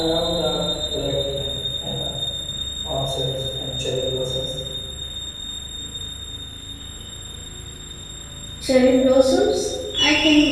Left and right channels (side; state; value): both; identical; correlation 1.00